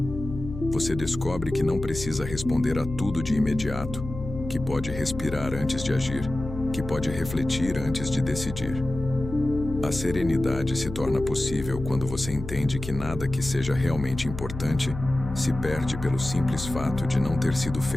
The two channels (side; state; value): left; noise; hum, 9 dB below the sound